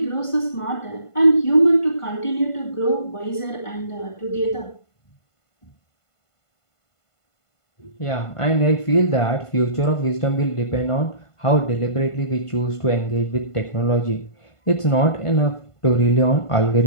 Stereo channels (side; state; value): right; late; 1.5 ms